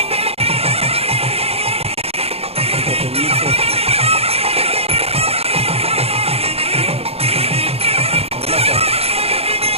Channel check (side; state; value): left; late; 0.29 ms